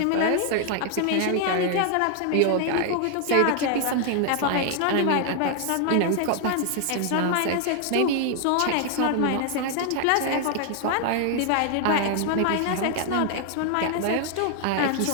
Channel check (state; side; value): different; both; correlation 0.00